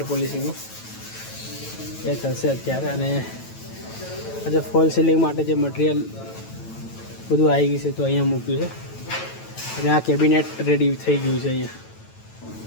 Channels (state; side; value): late; right; 9.1 ms